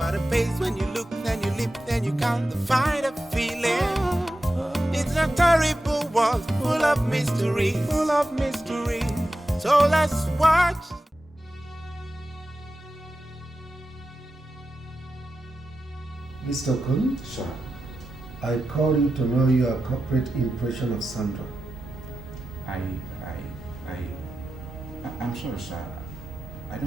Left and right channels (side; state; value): both; normal; correlation 0.92